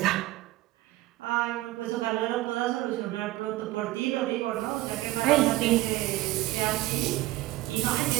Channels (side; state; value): left; quieter; 17.6 dB